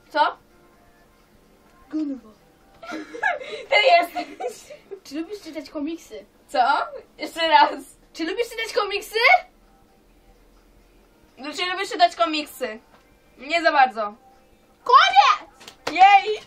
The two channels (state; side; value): identical; both; correlation 1.00